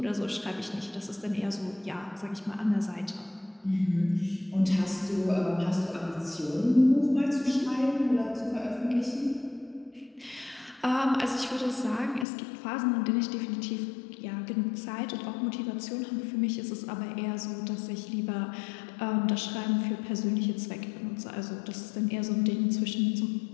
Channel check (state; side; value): drops out; right; at 12.2 s